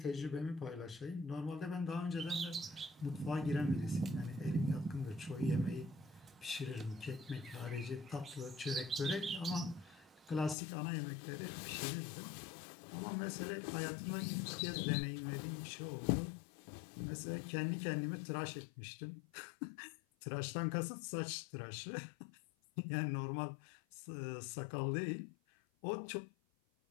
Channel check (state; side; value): drops out; right; at 10.6 s